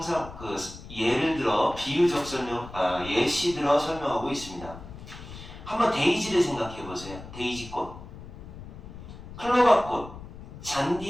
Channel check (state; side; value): noise; left; rumble, 14 dB below the sound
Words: 예를 들어 비유적 설명 예시 들어 설명하고 있습니다. 한번 데이지를 생각해 보세요. 데이지꽃, 클로바꽃,